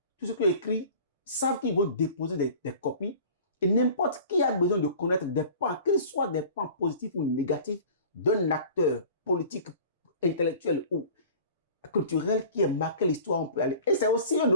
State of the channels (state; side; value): inverted; both; correlation -0.43